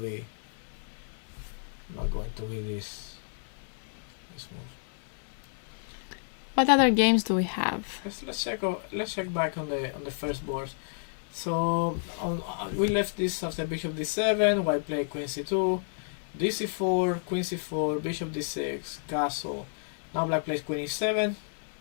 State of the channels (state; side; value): silent; right; digital silence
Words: this move. What other games do we have? Let's check back on the first board. So we left this after bishop d7. White played queen c2, d4, queen c4, bishop d6, castle. Now black plays queen e7,